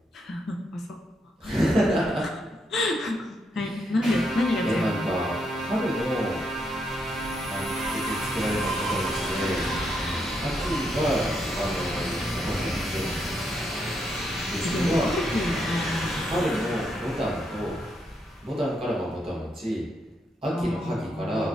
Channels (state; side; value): normal; both; correlation 0.78